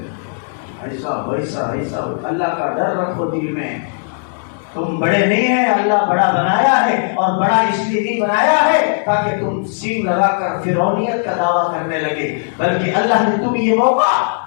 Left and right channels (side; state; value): right; silent; 66 dB below the other